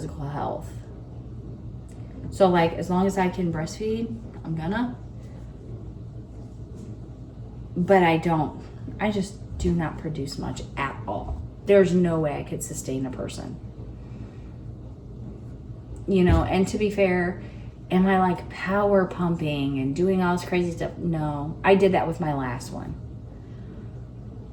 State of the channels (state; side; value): identical; both; correlation 1.00